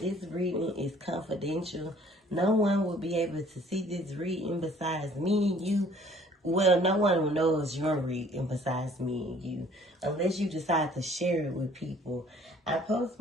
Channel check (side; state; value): both; normal; correlation 0.56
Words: reading is confidential. No one will be able to see this reading besides me and you. Well, no one knows your reading besides me and you, unless you decide to share it with people. I post